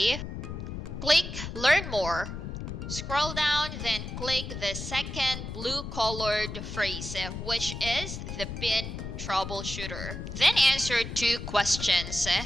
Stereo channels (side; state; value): left; noise; rumble, 7 dB below the sound